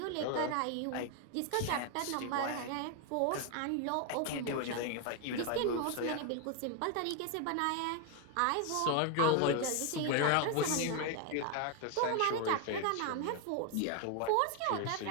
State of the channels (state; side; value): different; both; correlation 0.01